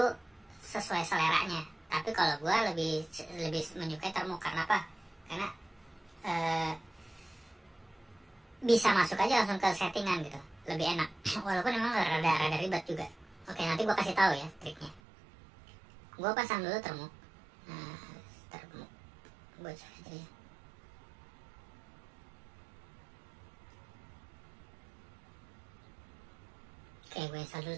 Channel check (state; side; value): drops out; left; at 15.0 s